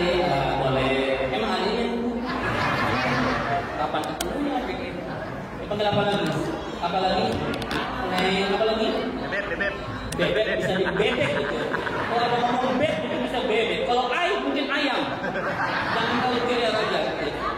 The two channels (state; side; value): identical; both; correlation 1.00